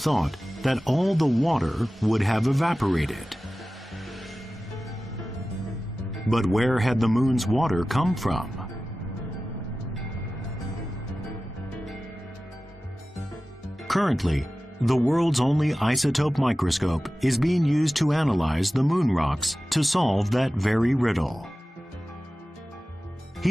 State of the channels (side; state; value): both; normal; correlation 0.95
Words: that all the water would have evaporated. But where had the moon's water come from? Currently, the world's only isotope microscope is being used to analyze the moon rocks to solve that very riddle.